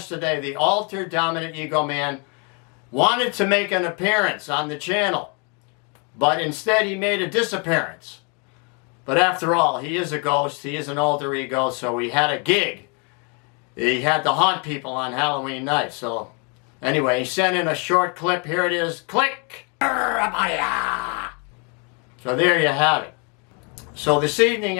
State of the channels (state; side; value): quieter; right; 34.7 dB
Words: the Alter Dominant Ego Man wanted to make an appearance on the channel, but instead he made a disappearance. But after all, he is a ghost, he is an alter ego, so he had a gig. He had to haunt people on Halloween night, so anyway, he sent in a short clip. Here it is. Click! So there you have it. So this evening